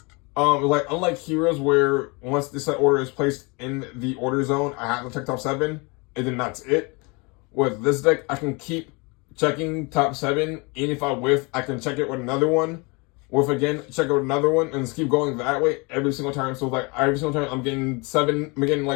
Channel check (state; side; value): quieter; right; 28.7 dB